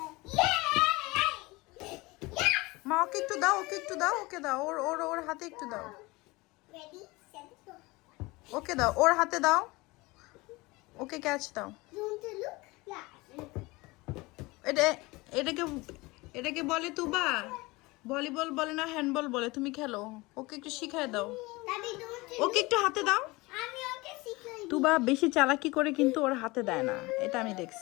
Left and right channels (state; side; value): quieter; right; 22.7 dB